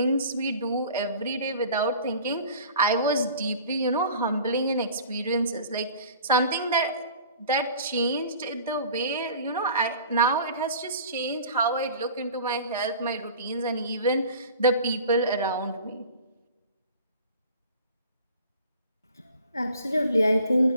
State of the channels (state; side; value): inverted; both; correlation -0.44